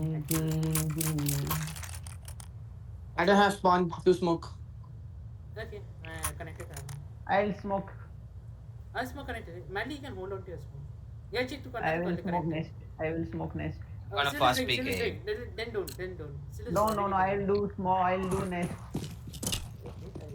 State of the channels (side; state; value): both; identical; correlation 1.00